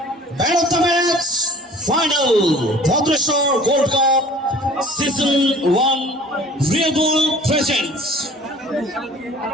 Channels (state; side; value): normal; both; correlation 0.48